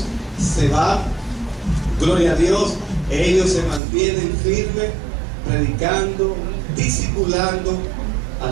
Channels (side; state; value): left; drops out; at 3.8 s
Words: se van. Gloria a Dios, ellos se mantienen firmes, predicando, discipulando a